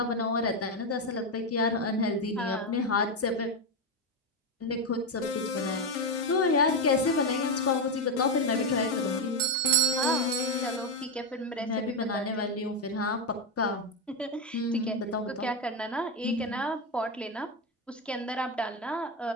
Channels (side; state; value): both; normal; correlation 0.09